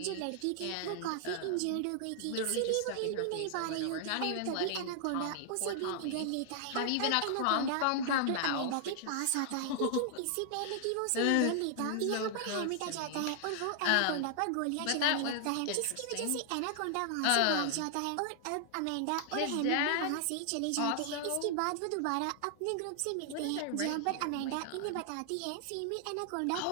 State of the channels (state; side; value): different; both; correlation 0.00